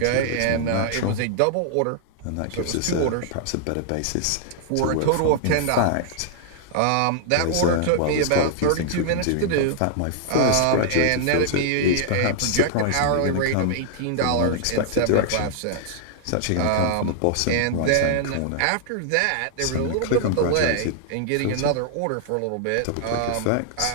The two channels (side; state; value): both; different; correlation -0.01